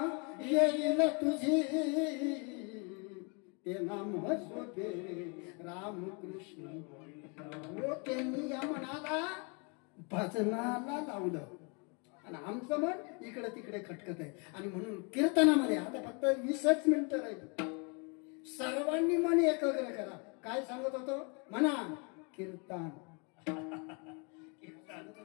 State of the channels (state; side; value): quieter; right; 34.1 dB